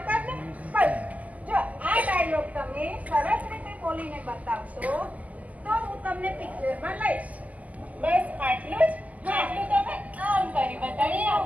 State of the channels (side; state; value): left; late; 0.075 ms